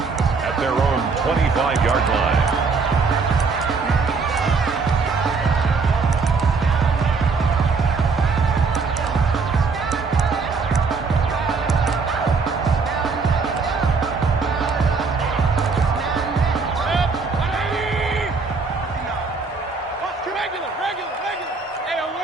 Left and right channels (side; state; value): left; quieter; 4.6 dB